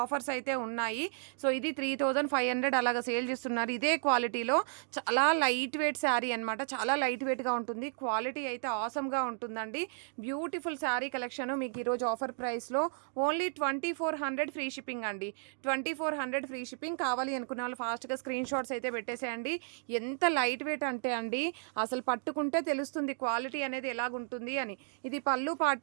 ఆఫర్స్ అయితే ఉన్నాయి. సో ఇది 3500 అలాగా సేల్ చేస్తున్నారు. ఇదే క్వాలిటీలో చాలా లైట్ వెయిట్ శారీ అనమాట, చాలా లైట్ వెయిట్గా ఉంటుంది. క్వాలిటీ అయితే ఆసమ్గా ఉంటుందండి. బ్యూటిఫుల్ శారీ కలెక్షన్ మీకు ఈరోజు ఆఫర్ ప్రైస్లో ఓన్లీ 2400 ఫ్రీ షిప్పింగ్ అండి. 2400 ఫ్రీ షిప్పింగ్. కావాలి అనుకున్న వాళ్ళు ఫాస్ట్గా స్క్రీన్ షాట్స్ అయితే పెట్టేసేయండి. ఎంత లైట్ వెయిట్ అంటే అండి, అసలు పట్టుకుంటే తెలుస్తుంది క్వాలిటీ అనేది ఎలాగుంటుంది అని. ఇది పళ్ళు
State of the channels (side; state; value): left; silent; 56 dB below the other